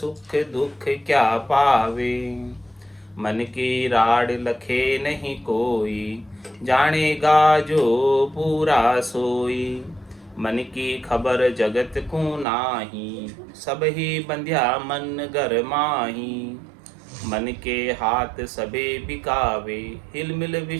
दुख क्या पावे। मन की राड लखे नहीं कोई, जानेगा जो पूरा सोई। मन की खबर जगत को नाही, सब ही बंध्या मन घर माही। मन के हाथ सबे बिकावे, हिल मिल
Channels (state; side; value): drops out; left; at 12.5 s